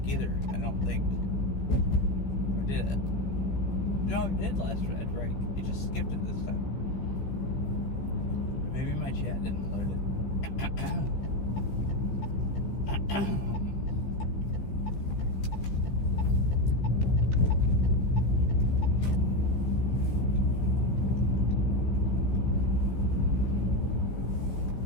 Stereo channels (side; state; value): right; late; 15 ms